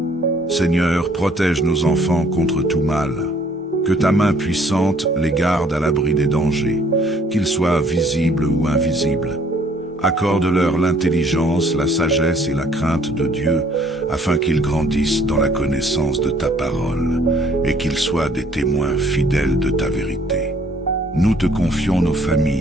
Seigneur, protège nos enfants contre tout mal. Que ta main puissante les garde à l'abri des dangers, qu'ils soient visibles ou invisibles. Accorde-leur l'intelligence, la sagesse et la crainte de Dieu, afin qu'ils grandissent dans la connaissance de ta parole et qu'ils soient des témoins fidèles de ta vérité. Nous te confions nos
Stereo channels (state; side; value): normal; both; correlation 0.60